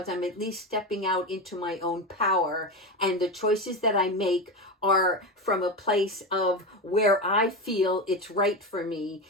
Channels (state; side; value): normal; both; correlation 0.18